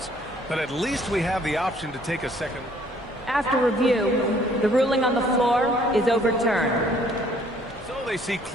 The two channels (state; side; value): normal; both; correlation 0.60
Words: But at least we have the option to take a second. After review, the ruling on the floor is overturned. So they see